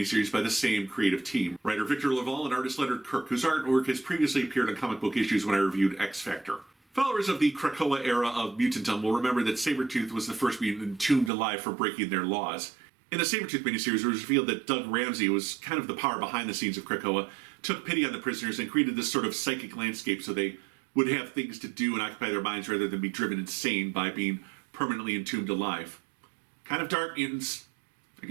by the same creative team. Writer Victor Laval and artist Leonard Kirk, whose artwork has previously appeared on comic book issues when I reviewed X Factor. Followers of the Krakoa era of Mutantum will remember that Sabertooth was the first mutant entombed alive for breaking their laws. In the Sabertooth miniseries, it was revealed that Doug Ramsey was kind of the power behind the scenes of Krakoa, took pity on the prisoners, and created this sort of psychic landscape so they would have things to do and occupy their minds rather than be driven insane by being permanently entombed alive. Kind of dark, mutants. I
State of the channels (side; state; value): left; drops out; at 11.3 s